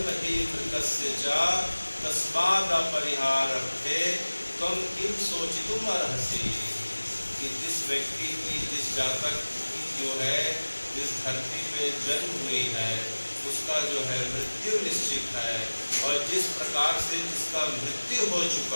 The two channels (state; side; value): inverted; both; correlation -1.00